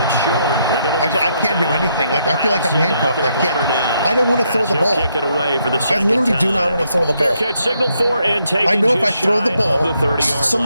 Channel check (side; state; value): both; inverted; correlation -0.76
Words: short. I can't do anything. Like, I feel like I'm handcuffed. I can't. I don't want to throw the ball. Kick it away for the I literally do not want to throw the ball. Catch signaled for and taken. I know if I throw the ball,